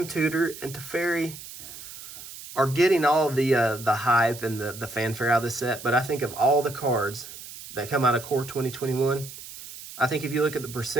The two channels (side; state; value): right; noise; hiss, 14 dB below the sound